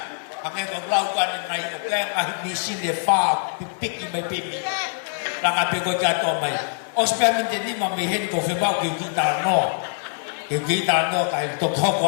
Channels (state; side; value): silent; right; 63 dB below the other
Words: ake ko lau kane nai o kaya ngahi misi le wha pipiki mai pimi langa pe koe katoa mai o spea minte nima me hen ko whemau ke kita noa ke kita noa kai toko